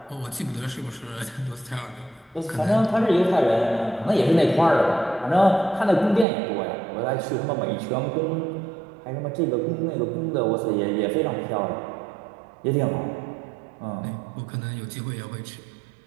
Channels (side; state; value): left; drops out; at 6.2 s